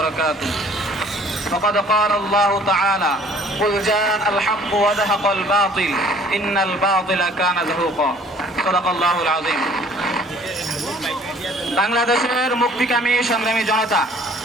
فقد قال الله تعالى: قل جاء الحق وزهق الباطل إن الباطل كان زهوقا. صدق الله العظيم. বাংলাদেশের মুক্তিকামী সংগ্রামী জনতা,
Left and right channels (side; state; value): both; normal; correlation 0.55